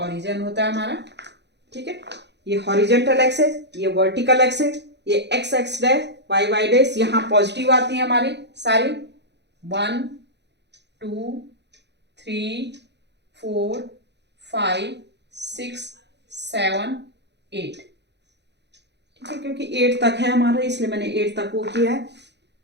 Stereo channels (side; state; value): left; late; 0.50 ms